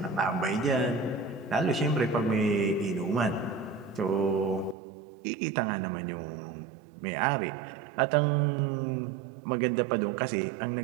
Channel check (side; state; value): left; drops out; at 4.8 s